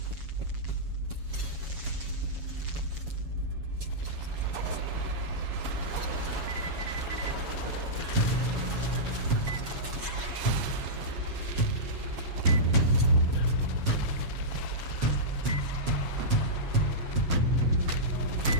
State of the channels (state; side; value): late; left; 7.2 ms